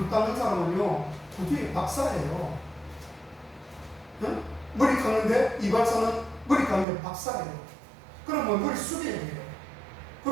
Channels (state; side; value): drops out; left; at 6.9 s